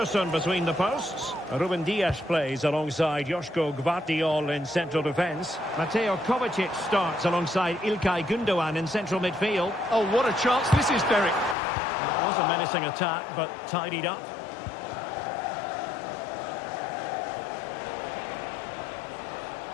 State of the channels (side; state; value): right; drops out; at 11.6 s